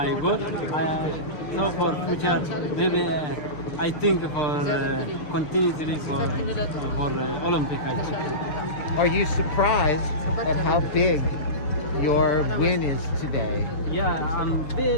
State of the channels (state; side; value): late; right; 6.7 ms